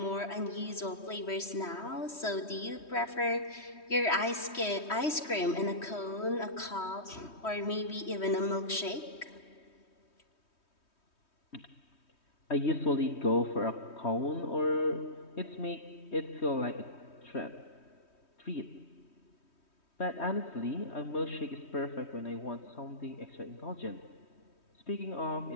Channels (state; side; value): late; right; 3.2 ms